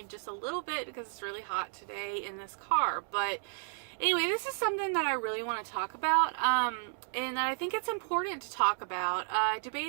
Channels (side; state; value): left; silent; 56 dB below the other